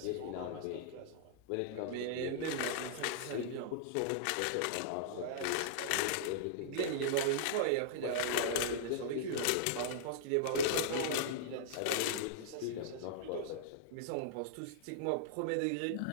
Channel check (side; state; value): both; different; correlation -0.02